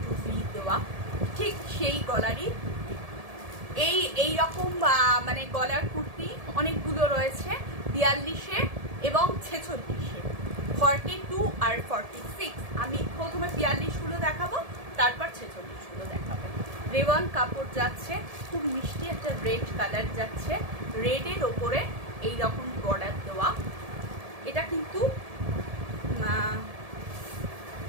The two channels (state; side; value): late; left; 1.7 ms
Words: ভি দেওয়া, ঠিক সেই গলারই। এই রকম মানে গলার কুর্তি অনেকগুলো রয়েছে 42-এ এবং 46-এ, 42 আর 46। আমি প্রথমে 42গুলো দেখাবো, তারপর 46গুলো দেখাবো। রেওয়ান কাপড় যাচ্ছে, খুব মিষ্টি একটা রেড কালার যাচ্ছে, রেডের ওপরে এই রকম বর্ডার দেওয়া। এটা কিন্তু